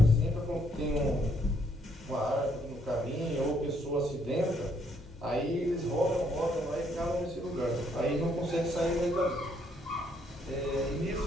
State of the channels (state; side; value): normal; both; correlation 0.70